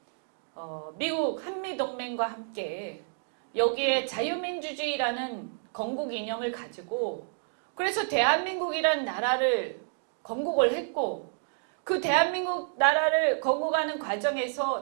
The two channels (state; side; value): silent; left; digital silence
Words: 미국 한미동맹과 함께 여기에 자유민주주의라는 건국 이념을 가지고 그래서 대한민국이라는 나라를 건국을 했고 그 대한민국 나라를 건국하는